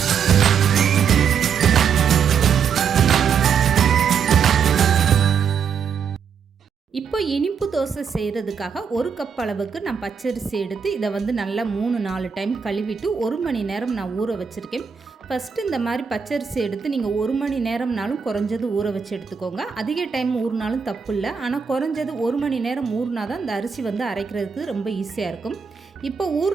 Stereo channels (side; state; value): left; quieter; 6.7 dB